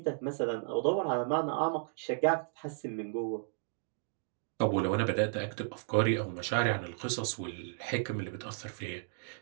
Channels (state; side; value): silent; left; digital silence